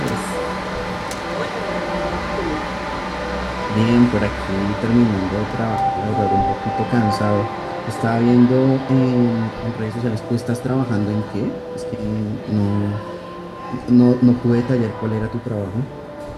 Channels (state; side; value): identical; both; correlation 1.00